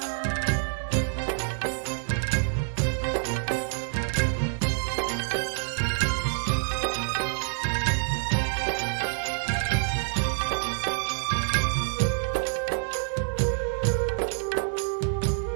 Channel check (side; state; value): left; silent; 59 dB below the other